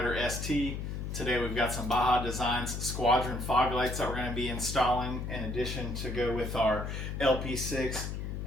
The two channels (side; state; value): left; noise; hum, 5 dB below the sound